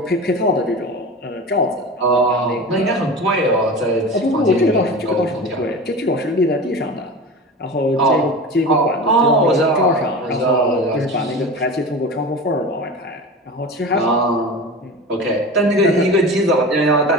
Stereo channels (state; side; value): normal; both; correlation 0.31